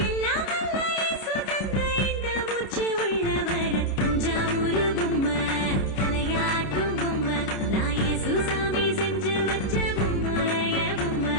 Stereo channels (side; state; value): right; late; 29 ms